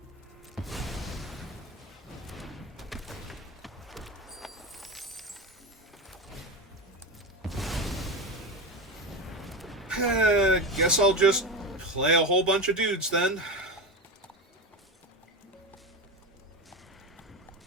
Guess I'll just play a whole bunch of dudes then.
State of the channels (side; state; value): both; normal; correlation 0.21